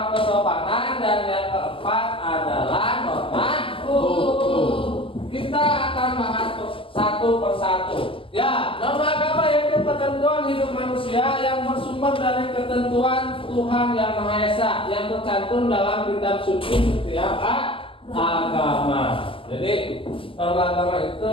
kesopanan, dan yang keempat adalah norma hukum. Kita akan bahas satu persatu. Ya, norma agama yaitu ketentuan hidup manusia yang bersumber dari ketentuan Tuhan Yang Maha Esa yang tercantum dalam kitab suci setiap agama. Jadi norma agama itu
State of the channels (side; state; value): right; late; 0.25 ms